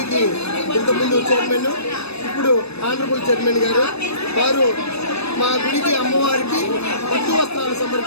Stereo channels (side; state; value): right; late; 0.79 ms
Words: ఇంతకుముందు చైర్మన్, ఇప్పుడు ఆనరబుల్ చైర్మన్ గారు వారు మా గుడికి అమ్మవారికి పట్టు వస్త్రాలు